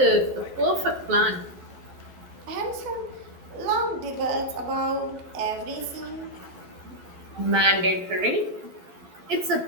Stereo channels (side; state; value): left; late; 11 ms